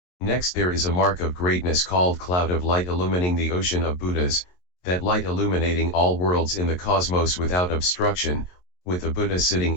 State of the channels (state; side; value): late; right; 22 ms